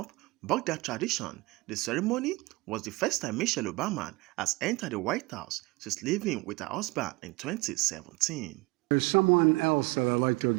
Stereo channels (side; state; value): left; quieter; 22.9 dB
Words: bucked that tradition. The ceremony was the first time Michelle Obama has entered the White House since living with her husband in 2017. There's someone else that I'd like to